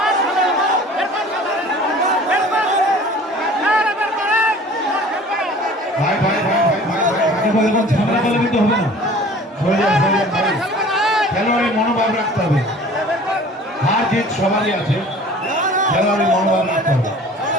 ভাই ভাই ভাই ভাই ভাই ভাই দেখো এখন ঝামেলা করলে কিন্তু হবে না। খেলোয়াড়ের মনোভাব রাখতে হবে, হার জিত সবারই আছে, খেলোয়াড়ের মনোভাব রাখতে হবে।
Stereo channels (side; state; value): both; normal; correlation 0.46